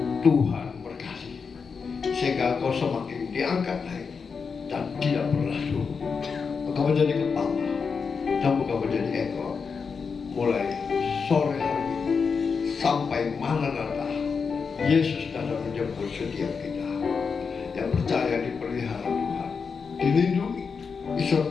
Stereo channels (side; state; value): right; quieter; 5.5 dB